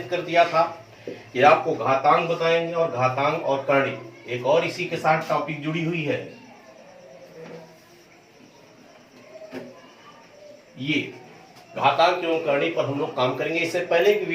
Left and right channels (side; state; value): both; identical; correlation 1.00